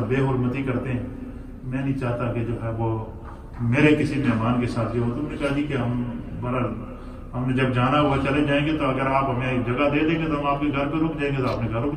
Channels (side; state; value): both; identical; correlation 1.00